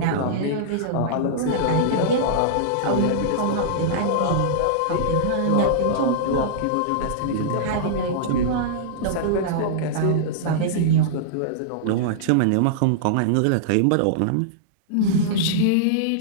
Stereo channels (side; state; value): both; different; correlation -0.02